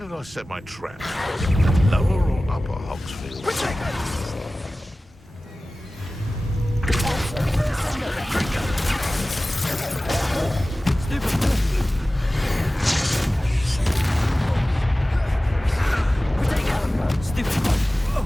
I set my trap? Lower or upper Hogsfield?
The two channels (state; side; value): normal; both; correlation 0.97